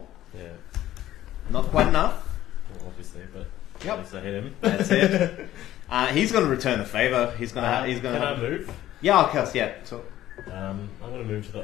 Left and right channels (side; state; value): right; quieter; 13.6 dB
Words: Yeah. Not quite enough. Well, obviously, but Yep. at least I hit him. That's it. He's going to return the favor. He's going to. He's going Can I to. move? Yeah, I'll cast. Yeah. So, I'm going to move to